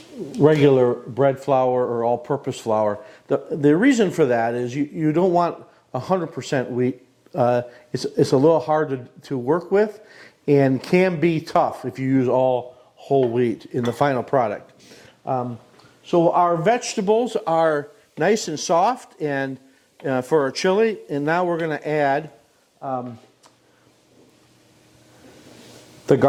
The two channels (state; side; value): identical; both; correlation 1.00